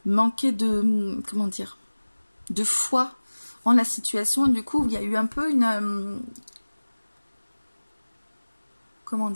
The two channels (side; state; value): both; inverted; correlation -1.00